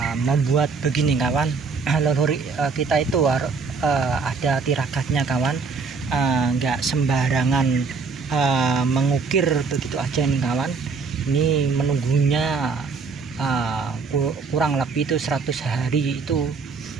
membuat begini kawan. Leluhur kita itu ada tiragatnya kawan, nggak sembarangan mengukir begitu aja nih kawan. Ini menunggunya kurang lebih itu 100 hari itu,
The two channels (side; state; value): left; quieter; 4.9 dB